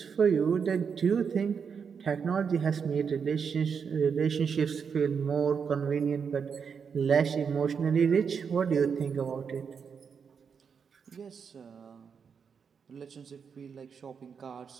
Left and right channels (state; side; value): quieter; left; 6.4 dB